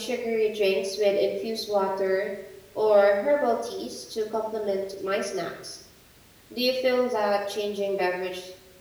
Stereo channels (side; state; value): both; identical; correlation 1.00